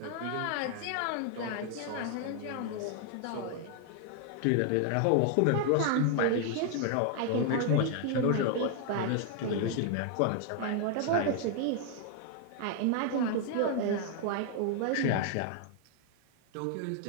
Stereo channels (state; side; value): different; both; correlation 0.00